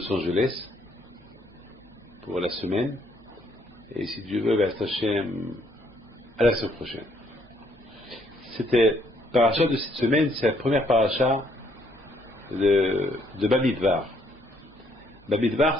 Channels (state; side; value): normal; both; correlation 0.68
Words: Angeles pour la semaine. Et si Dieu veut, Hachem, à la semaine prochaine. C'était paracha de cette semaine, c'est la première paracha de Bamidbar.